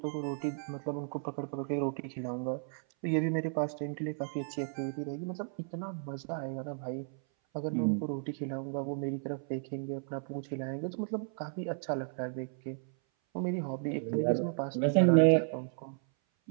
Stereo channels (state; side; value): silent; left; 55 dB below the other